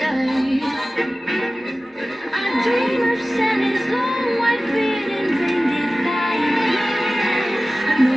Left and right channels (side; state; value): both; normal; correlation 0.96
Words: I dream of Santa's long white beard and reindeer flying. I